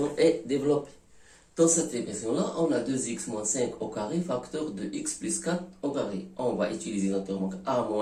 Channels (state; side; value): identical; both; correlation 1.00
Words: est développée. Dans cette expression-là, on a 2x moins 5 au carré, facteur de x plus 4 au carré. On va utiliser notre remarque a